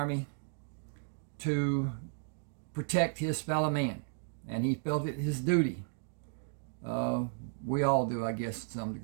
to protect his fellow man, and he felt it his duty. We all do, I guess, to some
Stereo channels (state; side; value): silent; left; digital silence